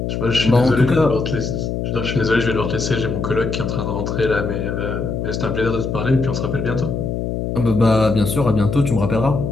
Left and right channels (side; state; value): left; noise; hum, 3 dB below the sound